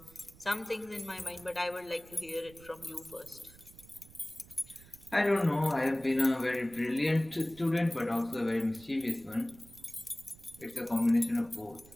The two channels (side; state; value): right; noise; rumble, 22 dB below the sound